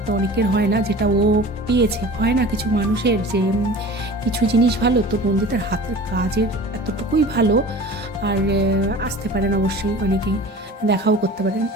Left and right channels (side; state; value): both; normal; correlation 0.40